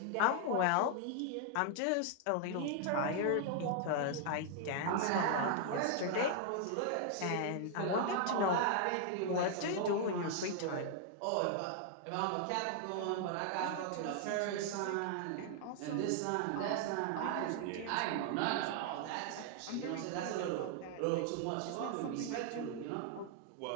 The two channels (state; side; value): different; both; correlation 0.00